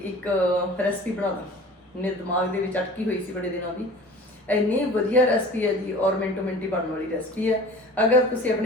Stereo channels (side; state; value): both; normal; correlation 0.43